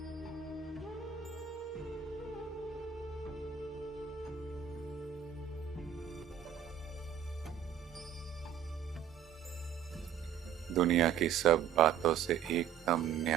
दुनिया की सब बातों से एकदम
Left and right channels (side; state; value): left; quieter; 9.0 dB